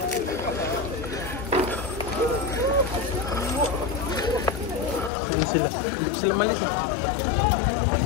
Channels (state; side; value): drops out; right; at 5.1 s